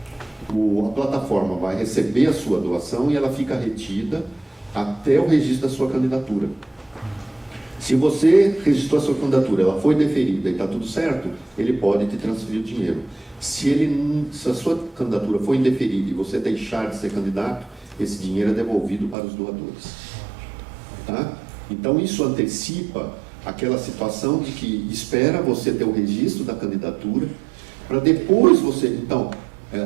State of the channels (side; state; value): left; drops out; at 19.2 s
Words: A plataforma vai receber a sua doação e ela fica retida até o registro da sua candidatura. Se você registrou a sua candidatura, ela foi deferida e está tudo certo, ele pode te transferir o dinheiro. Se a sua candidatura foi indeferida e você deixar de ser candidato, esse dinheiro é devolvido para os doadores. Tá? Então isso antecipa aquela situação de que espera você ter o registro da candidatura, para depois você... Então,